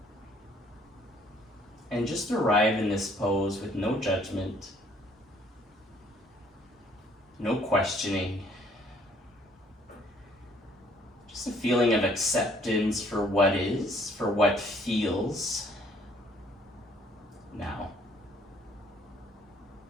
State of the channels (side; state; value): both; normal; correlation 0.62